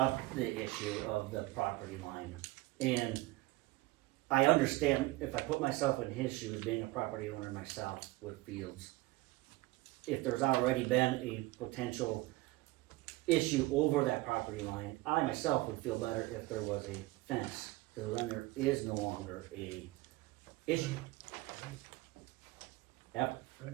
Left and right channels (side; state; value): left; quieter; 20.0 dB